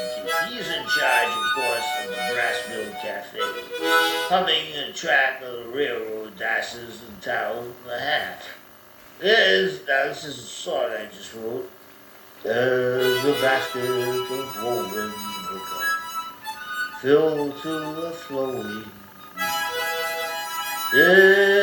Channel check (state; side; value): identical; both; correlation 1.00